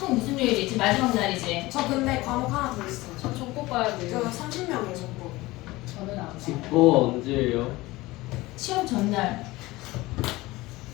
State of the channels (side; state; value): right; quieter; 19.8 dB